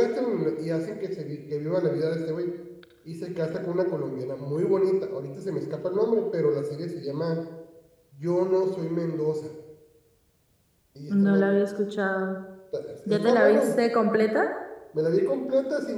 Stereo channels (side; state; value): both; identical; correlation 1.00